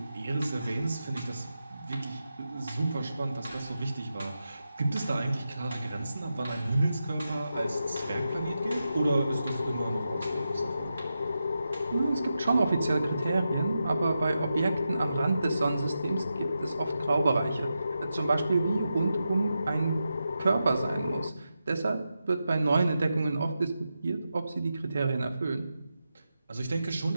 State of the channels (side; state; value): both; inverted; correlation -0.89